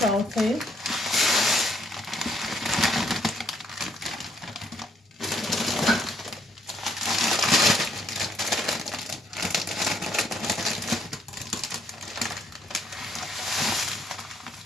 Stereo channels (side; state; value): both; normal; correlation 0.70